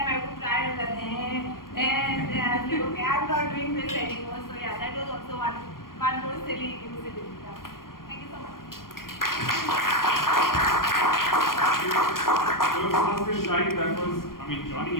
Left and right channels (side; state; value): right; late; 0.91 ms